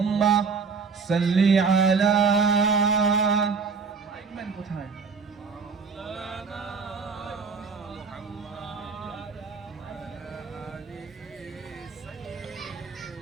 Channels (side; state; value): left; quieter; 5.2 dB